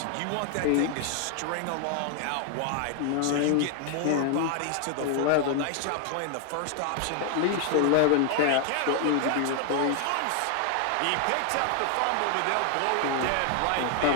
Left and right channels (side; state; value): both; different; correlation 0.00